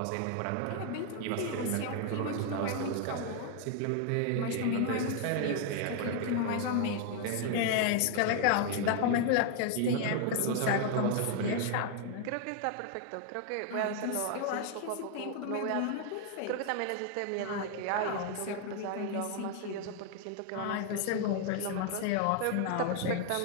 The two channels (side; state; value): both; different; correlation 0.00